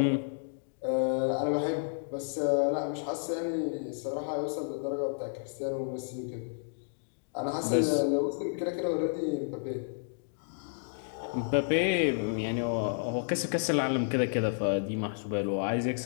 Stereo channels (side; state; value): right; silent; digital silence